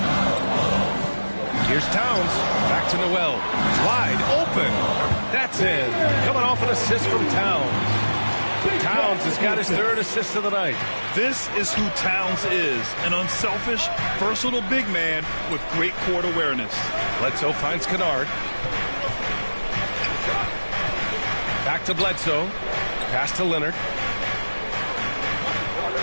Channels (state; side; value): inverted; both; correlation -1.00